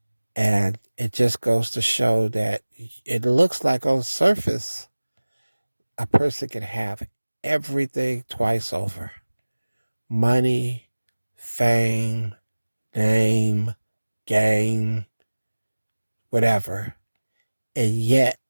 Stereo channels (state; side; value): inverted; both; correlation -1.00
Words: And it just goes to show that it looks like on the surface, a person can have everything twice over: money, fame, name, game, whatever. And yet,